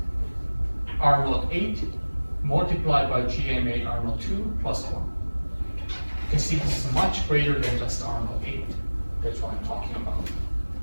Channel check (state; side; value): inverted; both; correlation -1.00